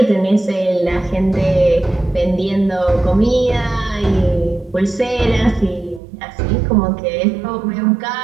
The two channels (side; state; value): left; drops out; at 6.0 s